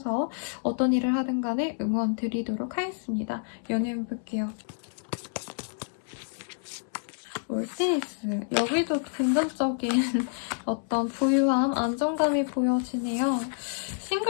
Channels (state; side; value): silent; right; 59 dB below the other